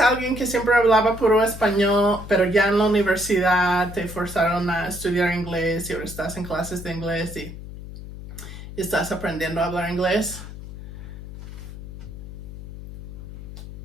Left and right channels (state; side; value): noise; left; hum, 12 dB below the sound